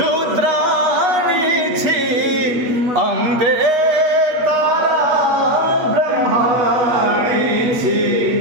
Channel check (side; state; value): left; late; 8.3 ms